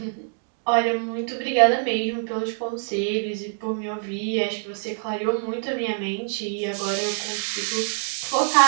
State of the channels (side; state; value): left; silent; digital silence